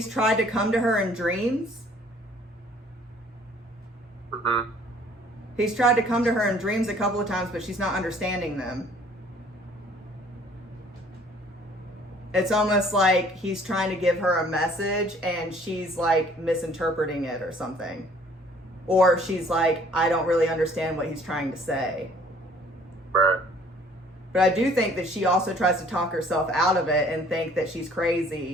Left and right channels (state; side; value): normal; both; correlation 0.56